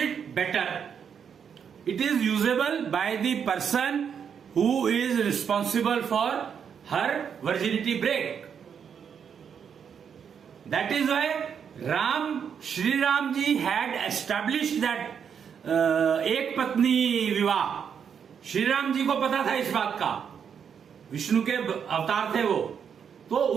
it better. It is usable by the person who is responsible for her virginity break. That is why Shri Ram ji had established that एक पत्नी विवाह। श्री राम जी को पता था इस बात का, विष्णु के अवतार थे वो, तो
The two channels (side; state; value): left; quieter; 7.4 dB